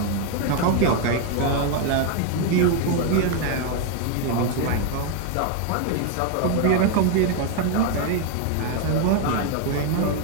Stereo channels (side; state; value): both; different; correlation 0.01